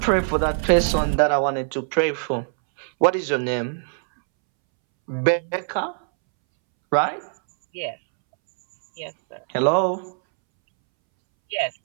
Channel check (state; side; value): silent; left; 64 dB below the other